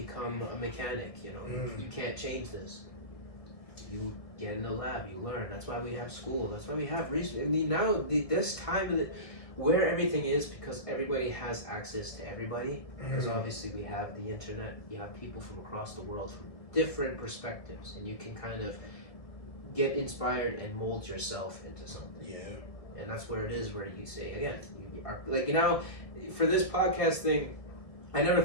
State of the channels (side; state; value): right; late; 1.6 ms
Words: a mechanic. You know, you can't change this. You get in the lab, you learn. That's why we have school. That's why we have research. I mean, now this time of where everything is, because everybody has access to everybody, because obviously we have the internet, you have people from across the world from different perspectives, and you can kind of get inspired and mold yourself into something. Yeah. And that's where it is, where you say, again, you are, like, you know, for this podcast thing, I never